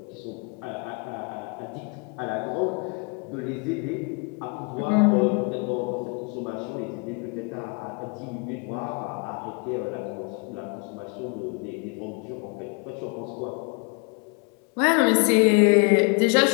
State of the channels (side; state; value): right; quieter; 33.7 dB